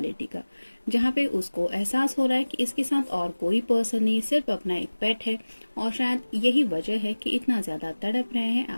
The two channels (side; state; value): both; inverted; correlation -1.00